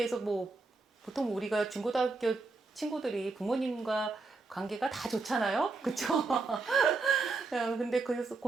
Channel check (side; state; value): left; quieter; 3.8 dB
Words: 보통 우리가 중고등학교 친구들이 부모님과 관계가 다 좋잖아요, 그렇죠? 근데 그래서